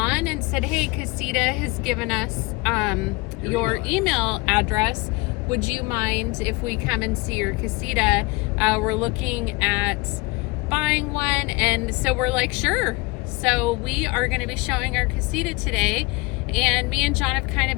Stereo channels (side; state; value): right; quieter; 25.4 dB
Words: and said, hey, Casita has given us your email address. Would you mind if we come and see your casita? We're looking at buying one, and so we're like, sure. So we are going to be showing our casita today, and me and John have kind of